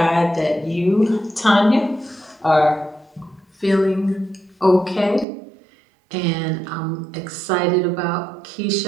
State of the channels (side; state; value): left; drops out; at 5.2 s